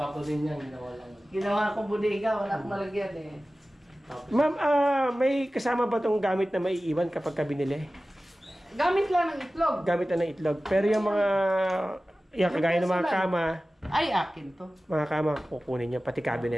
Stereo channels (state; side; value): normal; both; correlation 0.96